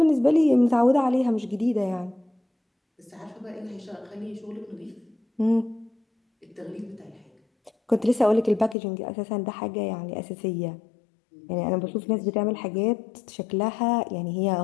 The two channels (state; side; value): drops out; right; at 8.8 s